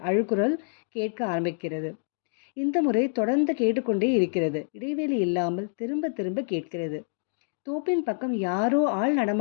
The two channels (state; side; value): silent; right; digital silence